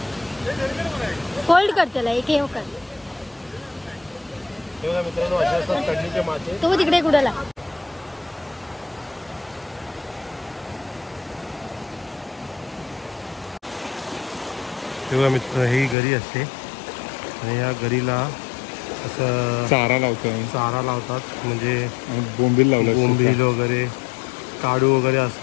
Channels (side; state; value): right; drops out; at 16.0 s